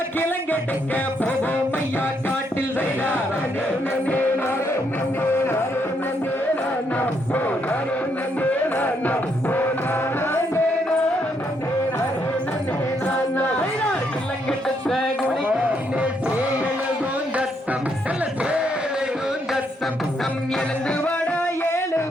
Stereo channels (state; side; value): normal; both; correlation 0.75